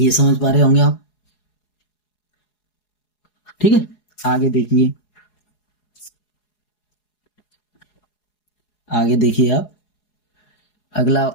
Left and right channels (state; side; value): late; right; 4.8 ms